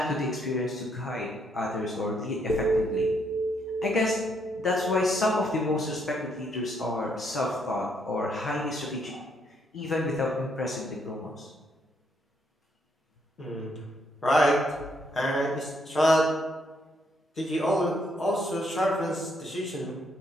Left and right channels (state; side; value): normal; both; correlation 0.73